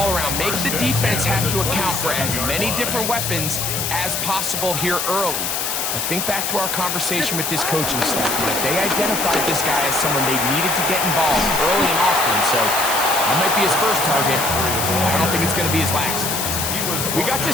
around. Make the defense have to account for as many different weapons as possible here early. I think back to our conversation with this coaching staff, that they identified this guy as someone they needed to get involved early and often, so that might be his first target. I don't think it's going to be his last. We got to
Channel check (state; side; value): noise; left; hiss, 1 dB below the sound